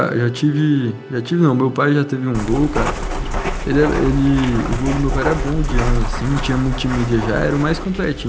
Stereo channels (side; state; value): both; identical; correlation 1.00